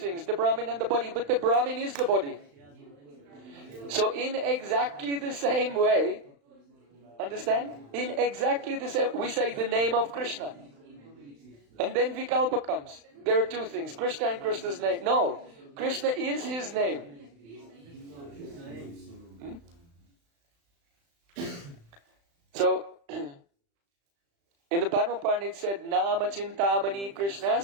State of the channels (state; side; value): late; left; 35 ms